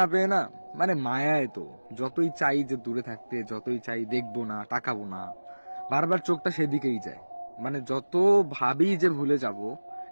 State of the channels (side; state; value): both; inverted; correlation -1.00